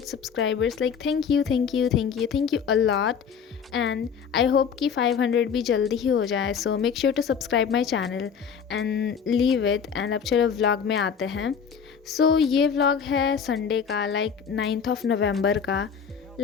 subscribers. Like thank you a lot, and I hope कि 500 भी जल्दी ही हो जाए. So make sure to subscribe my channel and leave it. And अब चलो vlog में आते हैं. So ये vlog है संडे का, like 9th of November का.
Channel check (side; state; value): right; quieter; 6.9 dB